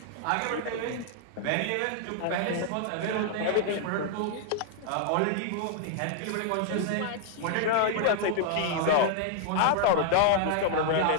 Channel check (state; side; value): different; both; correlation -0.01